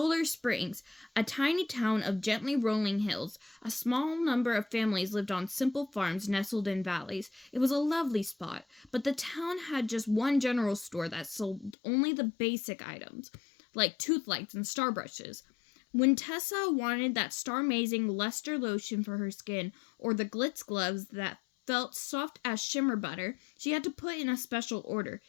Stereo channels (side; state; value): right; drops out; at 11.8 s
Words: Springs, a tiny town of gently rolling hills. A small number of families lived on simple farms nestled in valleys. It was a lovely spot, but the town had just one general store that sold only the basic items, like tooth lights and star brushes. When Tessa wanted that star-amazing luster lotion for her skin, or the glitz gloves that felt soft as shimmer butter, she had to put in a special order.